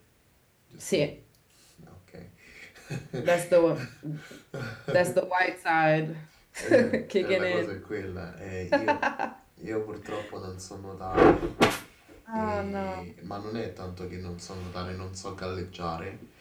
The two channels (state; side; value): identical; both; correlation 1.00